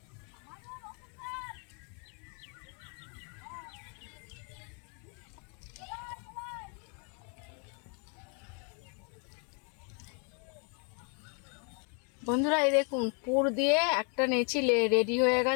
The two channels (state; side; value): quieter; right; 38.6 dB